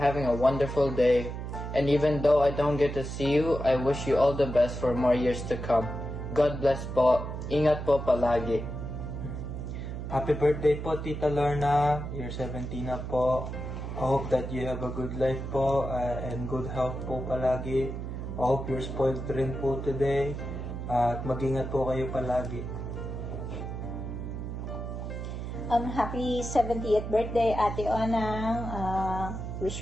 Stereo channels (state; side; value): noise; right; hum, 6 dB below the sound